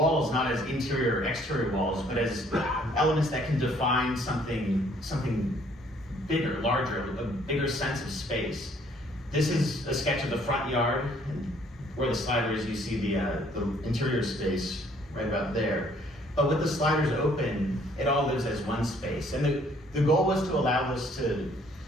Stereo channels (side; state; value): both; normal; correlation 0.62